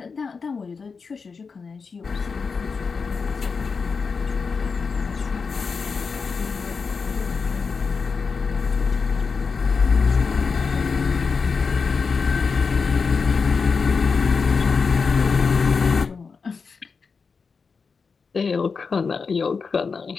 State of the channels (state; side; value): quieter; right; 5.1 dB